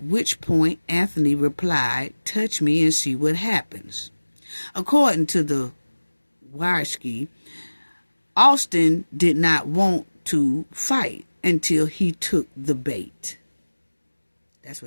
which point Anthony replied, "Touch me and see what happens." According to the Warski, Austin did not want to fight until he took the bait. That's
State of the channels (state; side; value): inverted; both; correlation -1.00